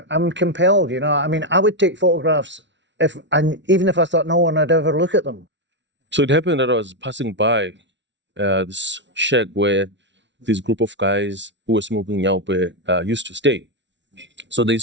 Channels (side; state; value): left; late; 0.52 ms